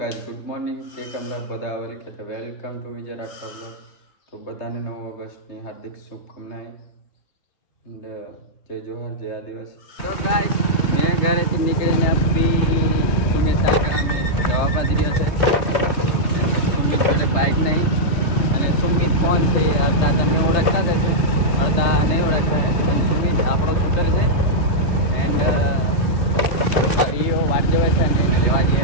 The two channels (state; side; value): late; right; 3.3 ms